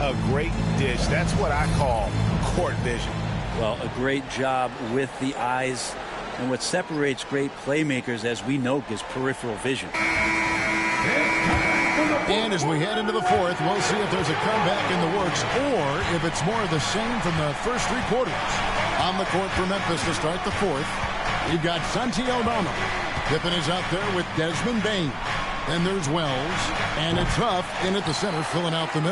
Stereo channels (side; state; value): both; identical; correlation 1.00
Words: a great dish. That's what I call court vision. Well, a great job with the eyes. And what separates great playmakers, as we know, is peripheral vision. And as we head into the 4th, we'll see if there's a comeback in the works or if it's more of the same from the first 3 quarters. On the court for Memphis to start the 4th, we've got Santi Aldama. Pippen is out there with Desmond Bane. Then there's Wells, and it's Huff in at the center, filling out the